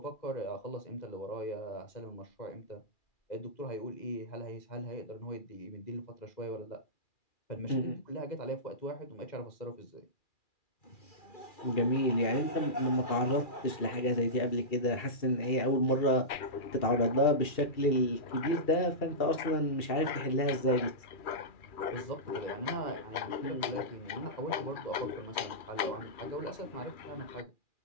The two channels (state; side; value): late; right; 2.4 ms